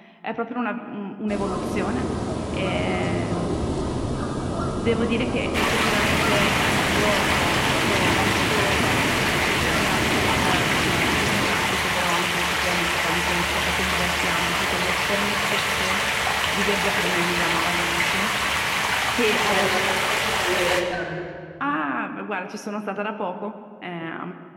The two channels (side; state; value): both; identical; correlation 1.00